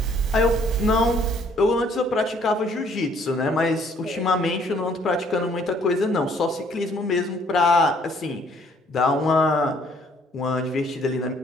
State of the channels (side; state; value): both; normal; correlation 0.62